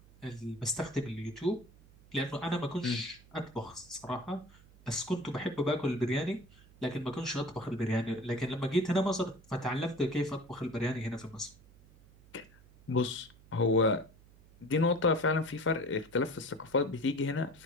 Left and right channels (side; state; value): right; noise; hum, 24 dB below the sound